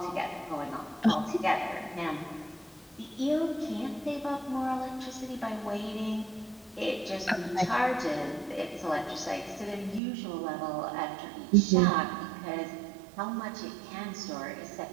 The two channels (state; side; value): drops out; left; at 10.0 s